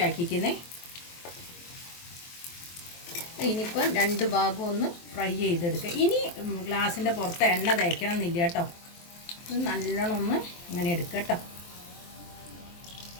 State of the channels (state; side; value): late; right; 23 ms